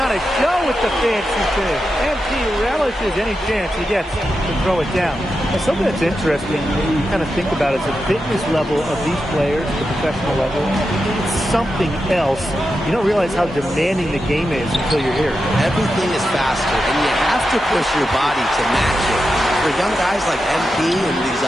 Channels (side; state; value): both; normal; correlation 0.89